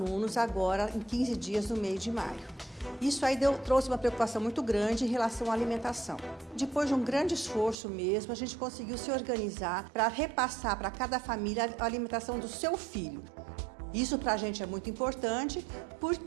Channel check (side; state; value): left; drops out; at 7.8 s